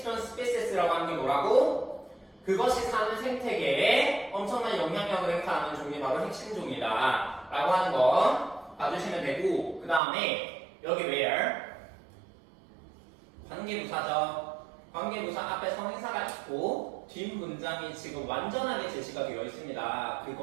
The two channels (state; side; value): drops out; left; at 10.0 s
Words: Species라고 하는 게 뭐라고? 그것이 사는 생태계에 엄청난 영향력을 행사하는 종이 바로 핵심 종이다 라고 하는 거 봐주시면 되고, 그 다음에 여기 where 관계부사죠. 관계부사 앞에 성인사가 있고 뒷 문장이 지금 완전하게 제시가 되어 있습니다.